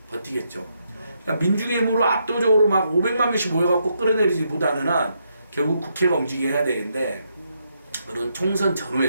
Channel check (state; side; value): inverted; both; correlation -0.78